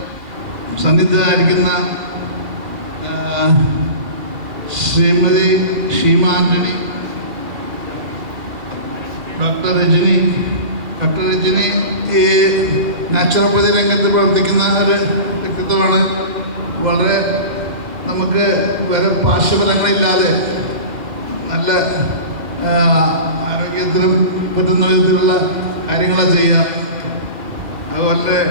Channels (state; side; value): late; left; 2.4 ms